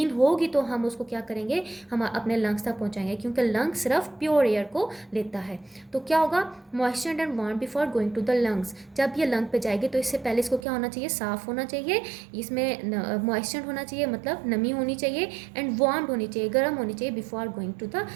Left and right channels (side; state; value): left; drops out; at 10.7 s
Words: होगी तो हम उसको क्या करेंगे? हम अपने लंग्स तक पहुँचाएंगे, क्योंकि लंग्स सिर्फ प्योर एयर को लेता है। तो क्या होगा? Moistured and warm before going to the lungs. जब ये लंग पे जाएगी तो इससे पहले इसको क्या होना चाहिए? साफ़ होना चाहिए, इसमें मॉइस्चर्ड होना चाहिए, मतलब नमी होनी चाहिए, एंड वार्म होनी चाहिए, गर्म होनी चाहिए, before going to the